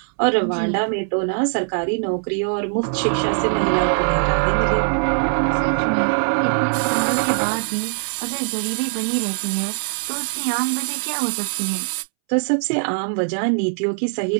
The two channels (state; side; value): silent; left; 65 dB below the other